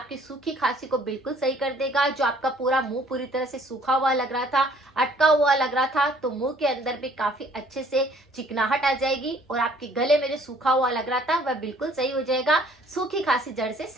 सूखी खांसी को बिल्कुल सही कर देगा। जो आपका पूरा मुंह पूरी तरह से सूखा हुआ लग रहा था, अटका हुआ लग रहा था, तो मुंह के अंदर भी काफी अच्छे से चिकनाहट आ जाएगी और आपके गले में जो सूखा हुआ लग रहा था वह बिल्कुल सही हो जाएगा। सूखी खांसी जड़ से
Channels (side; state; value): both; normal; correlation 0.58